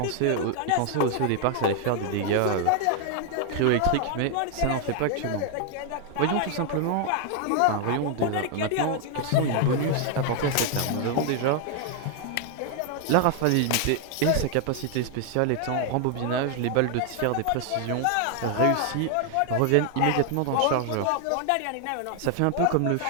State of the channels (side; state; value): both; different; correlation 0.00